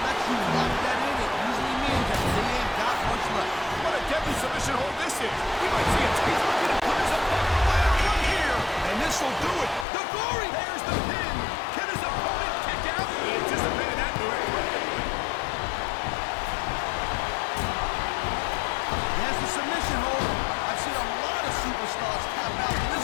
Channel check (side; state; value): right; drops out; at 9.9 s